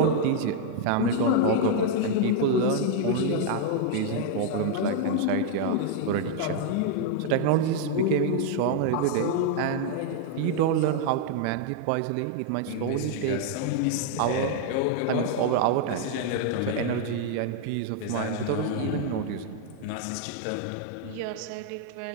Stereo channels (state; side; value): different; both; correlation 0.00